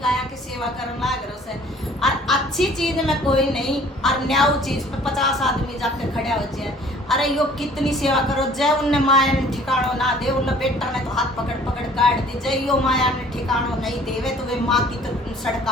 की सेवा करने लग रहे उसे। और अच्छी चीज में कोई नहीं और न्याऊ चीज पे 50 आदमी जाके खड़े हो जाए। अरे यो कितनी सेवा करो जय उनने माया ने ठिकानो ना दे उन बेटा ने तो हाथ पकड़ पकड़ काट दी जय यो माया ने ठिकानो नहीं देवे तो वे माँ की तो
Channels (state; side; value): normal; both; correlation 0.53